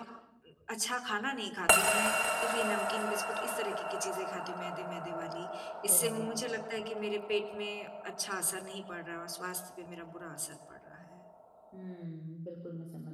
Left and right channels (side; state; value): both; identical; correlation 1.00